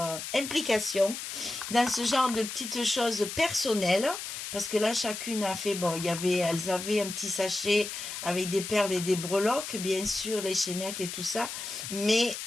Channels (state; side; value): noise; left; hiss, 7 dB below the sound